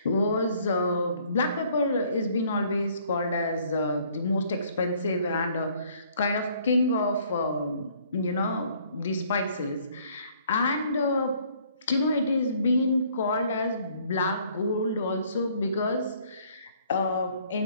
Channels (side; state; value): both; inverted; correlation -0.61